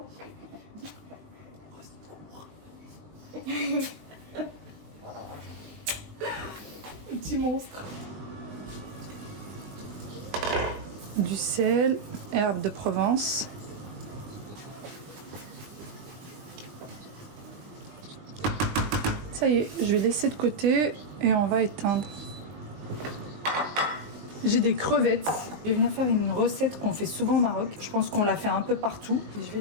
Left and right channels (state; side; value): late; left; 19 ms